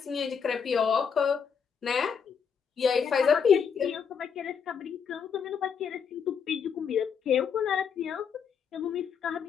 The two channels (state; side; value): quieter; right; 6.8 dB